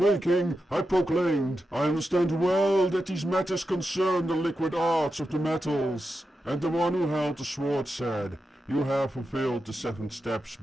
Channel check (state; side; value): normal; both; correlation 0.89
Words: I proclaimed, I understand well that these matters concern the liquid arts of the metals. And the one who held the sword said, you have fulfilled the 7 steps